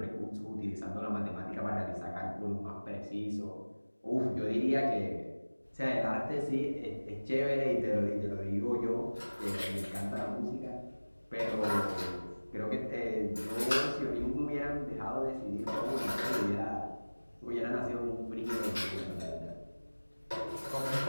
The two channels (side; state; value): both; inverted; correlation -1.00